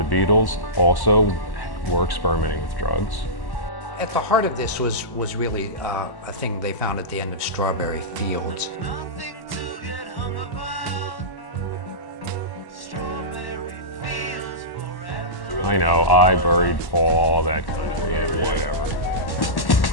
Beatles also were experimenting with drugs. At the heart of this was really a thing they found at the end of Strawberry Fields. I know, I buried Paul, that kind of thing, whatever.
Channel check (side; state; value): right; late; 1.1 ms